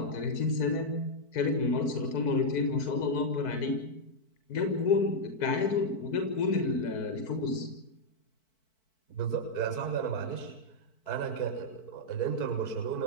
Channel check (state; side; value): late; right; 4.6 ms